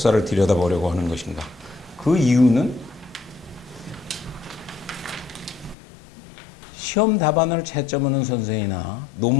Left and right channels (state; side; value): drops out; right; at 5.8 s